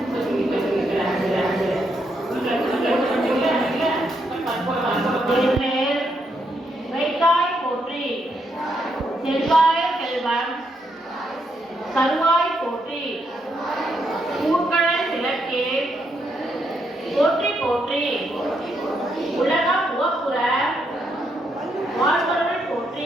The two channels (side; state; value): both; normal; correlation 0.78